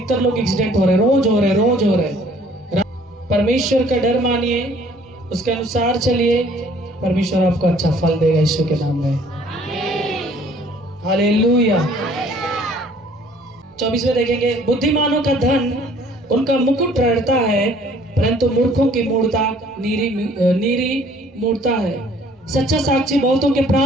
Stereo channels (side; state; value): both; normal; correlation 0.57